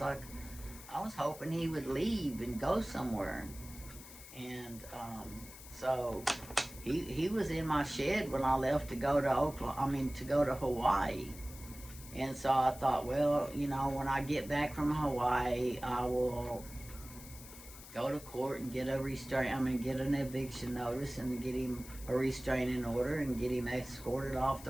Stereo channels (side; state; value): left; noise; hiss, 16 dB below the sound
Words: like, I was hoping he would leave and go somewhere. And so he was in my shed when I left to go to to go to Hawaii. And so I thought, well, you know, when I get back from Hawaii, I will go to court and get get an eviction notice and get him a restraining order and get him escorted off the